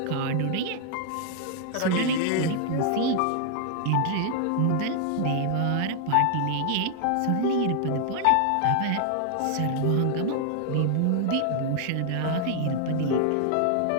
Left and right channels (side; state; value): both; different; correlation 0.00